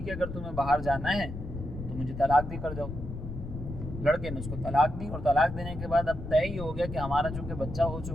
ہے اگر تمہیں باہر جانا ہے تو مجھے طلاق دے کر جاؤ۔ لڑکے نے اس کو طلاق دی، اور طلاق دینے کے بعد اب طے ہی ہو گیا کہ ہمارا چونکہ بچہ ہو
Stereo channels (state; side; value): noise; left; rumble, 8 dB below the sound